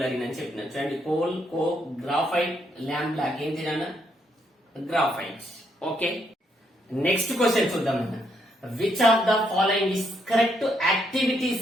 అని చెప్పిన. చూడండి coal, coke, graphite, lamp black ఏంటి నాన్న గ్రాఫైట్. ఓకే, నెక్స్ట్ క్వశ్చన్ చూద్దాం అన్న. Which of the following is correct activity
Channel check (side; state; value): both; normal; correlation 0.75